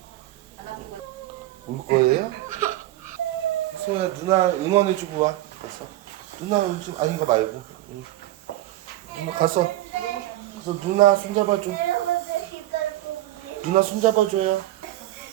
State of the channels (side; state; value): left; quieter; 15.7 dB